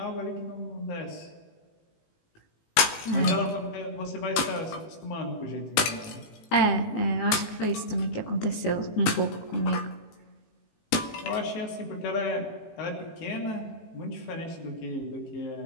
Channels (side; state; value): right; late; 18 ms